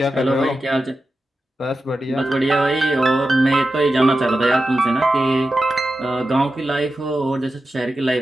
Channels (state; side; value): normal; both; correlation 0.91